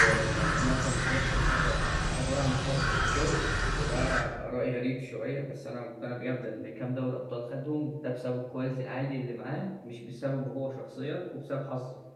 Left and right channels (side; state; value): both; identical; correlation 1.00